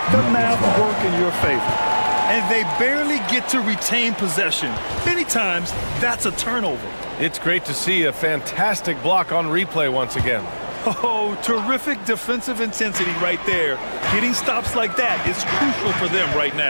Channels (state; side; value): inverted; both; correlation -1.00